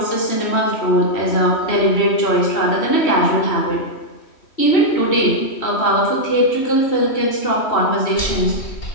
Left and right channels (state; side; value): late; right; 3.1 ms